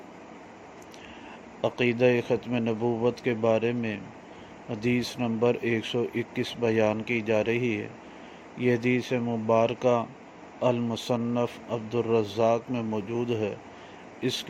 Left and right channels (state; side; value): identical; both; correlation 1.00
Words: عقیدہ ختم نبوت کے بارے میں حدیث نمبر 121 بیان کی جا رہی ہے۔ یہ حدیث مبارکہ المصنف عبدالرزاق میں موجود ہے۔ اس